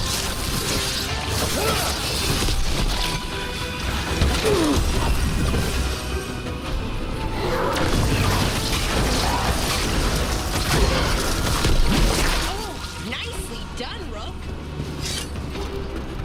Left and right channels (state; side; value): identical; both; correlation 1.00